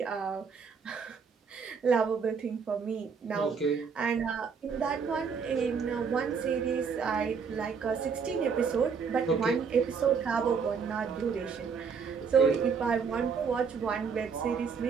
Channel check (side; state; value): left; quieter; 5.9 dB